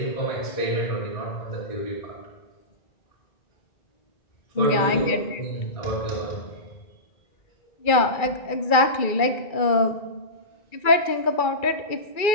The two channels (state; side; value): late; right; 2.3 ms